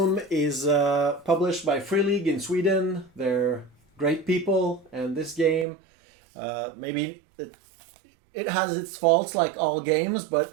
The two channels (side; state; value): left; drops out; at 5.7 s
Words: is published by Free League in Sweden. They're great people, and this game, maybe it has its faults like all games,